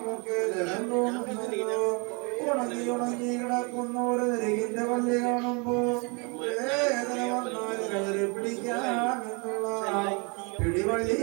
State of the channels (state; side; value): quieter; left; 32.2 dB